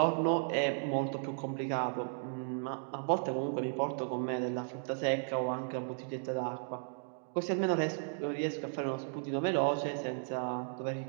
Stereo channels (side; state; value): left; silent; digital silence